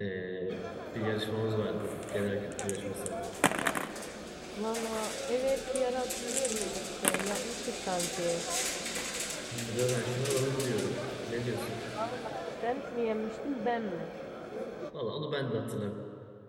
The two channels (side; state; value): both; identical; correlation 1.00